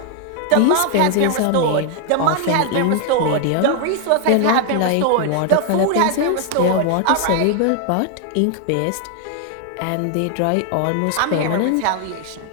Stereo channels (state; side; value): different; both; correlation 0.00